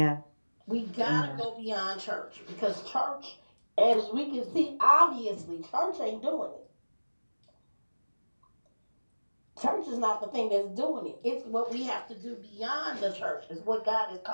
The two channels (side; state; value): both; inverted; correlation -1.00